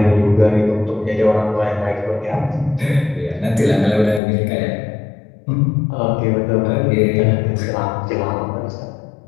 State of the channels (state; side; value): drops out; right; at 4.2 s